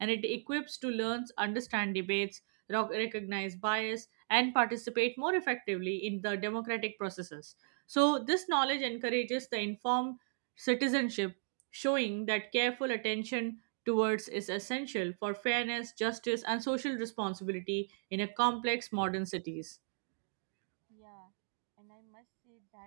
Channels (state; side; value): silent; left; digital silence